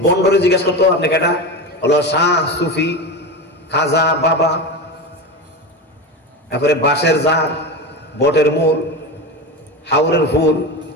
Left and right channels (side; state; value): both; normal; correlation 0.22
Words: বন্ডরে জিজ্ঞাসা করতো আপনি কেটা, হলো শাহ, সুফি, খাজা, বাবা, তারপরে বাঁশের জার, বটের মূল, হাওরের ফুল,